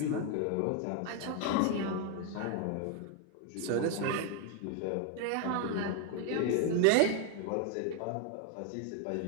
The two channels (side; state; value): both; different; correlation 0.01